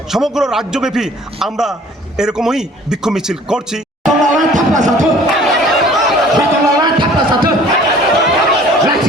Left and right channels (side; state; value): both; normal; correlation 0.51